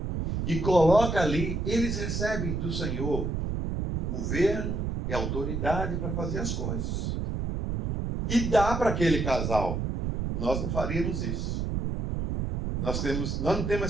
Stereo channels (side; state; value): right; noise; rumble, 1 dB below the sound